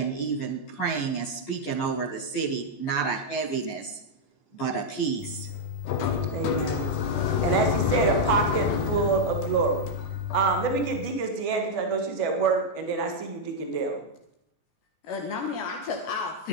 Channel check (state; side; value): late; right; 14 ms